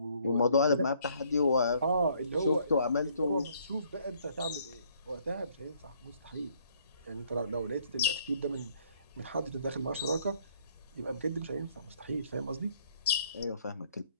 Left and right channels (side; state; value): both; inverted; correlation -0.64